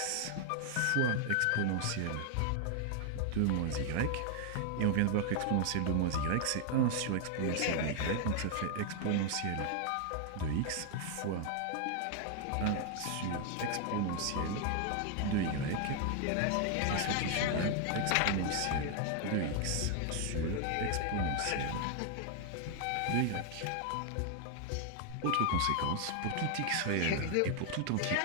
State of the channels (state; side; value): different; both; correlation 0.00